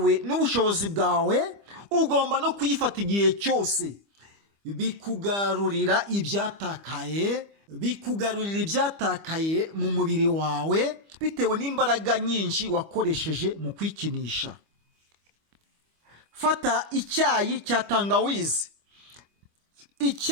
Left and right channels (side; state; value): left; late; 25 ms